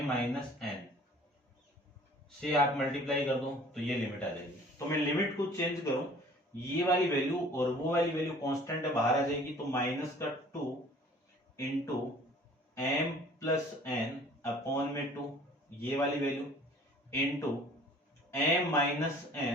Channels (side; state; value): both; normal; correlation 0.51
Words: एन से आप मल्टीप्लाई कर दो तो ये लिमिट आ जाएगी। तो मैं लिमिट को चेंज करूं, ये वाली वैल्यू और वो वाली वैल्यू कांस्टेंट है, बाहर आ जाएगी, तो -2 into m plus n upon में 2, ये वाली value into m minus